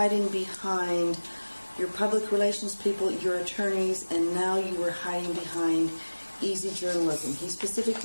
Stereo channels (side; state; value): both; inverted; correlation -1.00